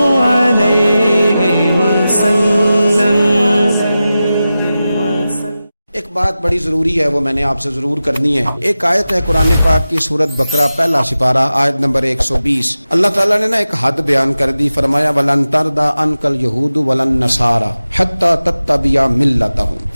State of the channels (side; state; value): both; inverted; correlation -0.94